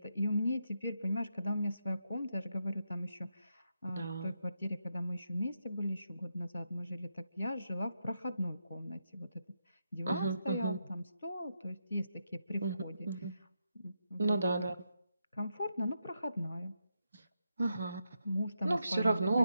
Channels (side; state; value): both; inverted; correlation -0.83